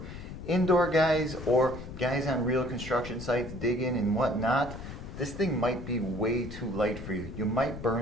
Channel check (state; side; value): noise; left; rumble, 11 dB below the sound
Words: Indoor guys or guys on real construction sites digging and whatnot, this thing might be way too light for you. You might